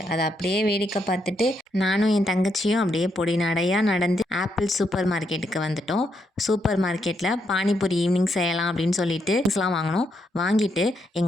அதை அப்படியே வேடிக்கை பார்த்துட்டு நானும் என் தங்கச்சியும் அப்படியே பொடி நடையாக நடந்து ஆப்பிள் சூப்பர் மார்க்கெட்டுக்கு வந்துட்டோம். சூப்பர் மார்க்கெட்டில் பானிபூரி ஈவினிங் செய்யலாம் அப்படின்னு சொல்லிட்டு திங்ஸ்லாம் வாங்கினோம். வாங்கிட்டு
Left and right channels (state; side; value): normal; both; correlation 0.79